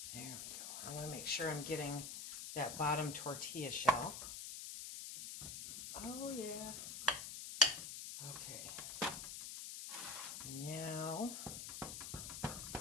there we go. I want to make sure I'm getting that bottom tortilla shell. Oh, yeah. Okay. Now,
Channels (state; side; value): noise; left; hiss, 7 dB below the sound